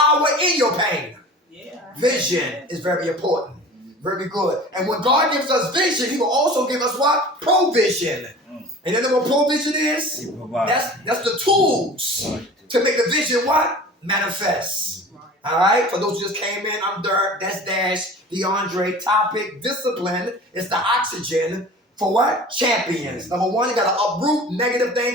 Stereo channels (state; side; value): normal; both; correlation 0.40